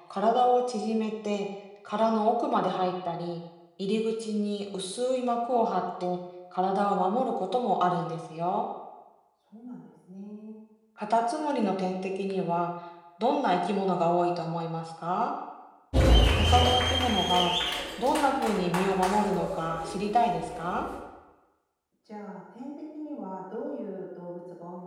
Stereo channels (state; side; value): identical; both; correlation 1.00